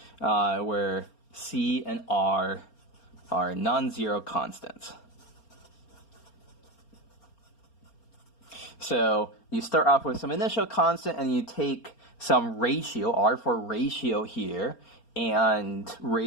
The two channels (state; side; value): late; right; 4.3 ms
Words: where c and r are non-zero constants. So you start off with some initial constant and you take some ratio, r for ratio here, and